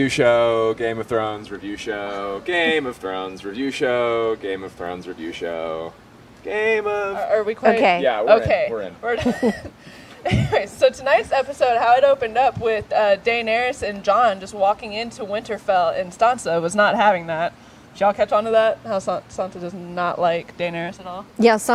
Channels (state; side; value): identical; both; correlation 1.00